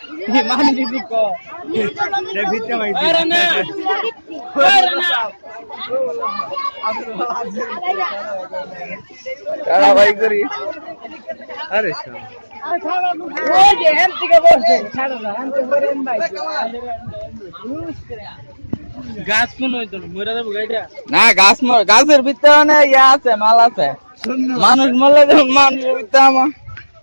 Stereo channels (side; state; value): both; inverted; correlation -1.00